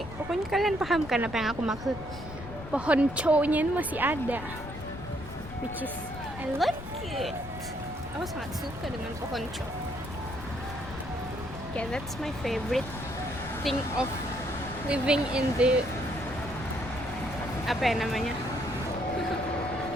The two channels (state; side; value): noise; left; rumble, 12 dB below the sound